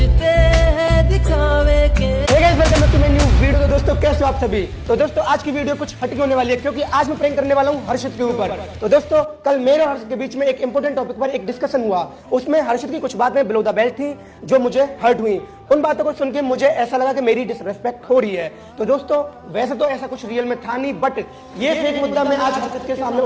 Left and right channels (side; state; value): both; identical; correlation 1.00